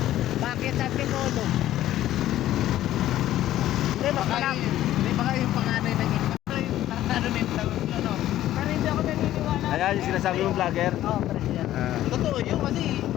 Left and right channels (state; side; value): quieter; right; 13.4 dB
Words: Bakit? Sabi ko, no? Hindi, mas malaki. Hindi baka yung panganay ng ano nito, ano? Pero hindi ako naniniwala. Ayan yung sinasabi mong vlogger. Oo, pre, yan. Totoo yun kasi